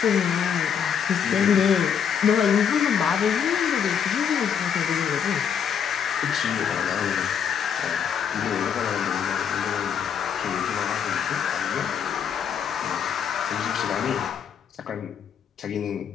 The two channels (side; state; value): right; quieter; 7.8 dB